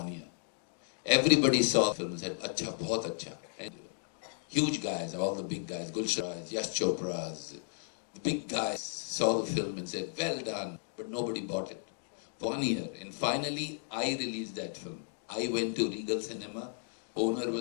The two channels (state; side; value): silent; right; digital silence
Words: year. Everybody saw the film and said, Acha, bahut acha. And huge guys, all the big guys, Gulsharas, Yash Chopras, the big guys saw the film and said, well done, but nobody bought it. 1 year. And finally, I released that film. I went to Regal Cinema. Owner